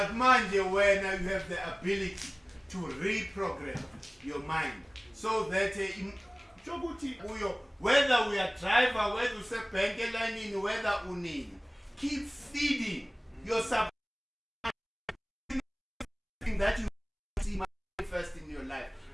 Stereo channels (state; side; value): identical; both; correlation 1.00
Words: mind you, when you have the ability to reprogram your mind so that whether we are driver, whether we say bank line, whether unini, keep feeding yourself that you see manifest in your life.